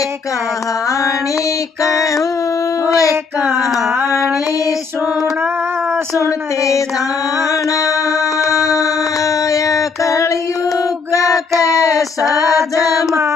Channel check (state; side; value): quieter; right; 5.0 dB